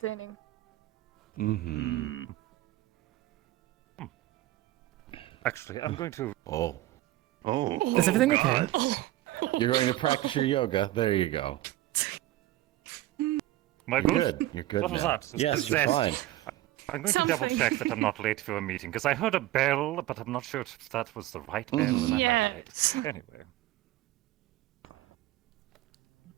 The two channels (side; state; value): left; quieter; 15.9 dB